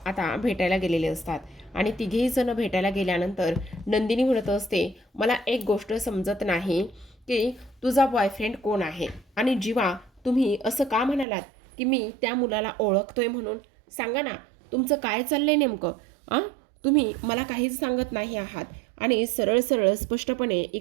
भेटायला गेलेले असतात आणि तिघेही जण भेटायला गेल्यानंतर नंदिनी म्हणत असते, मला एक गोष्ट समजत नाही की तुझा बॉयफ्रेंड कोण आहे आणि जीवा तुम्ही असं का म्हणालात की मी त्या मुलाला ओळखतोय म्हणून? सांगा ना, तुमचं काय चाललंय नेमकं? तुम्ही मला काहीच सांगत नाही आहात आणि सरळ सरळ स्पष्टपणे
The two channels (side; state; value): left; drops out; at 11.2 s